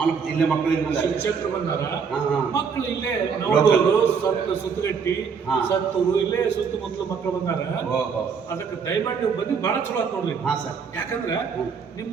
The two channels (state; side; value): quieter; left; 6.1 dB